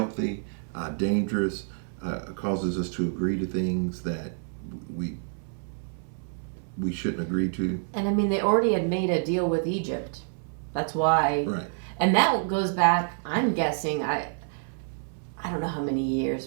dangerous, causes us to agree to things that we shouldn't agree to. And I mean, they already had made a deal with Egypt. That's why. Right. And that goes back, I'm guessing, I don't know how many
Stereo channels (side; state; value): left; silent; 59 dB below the other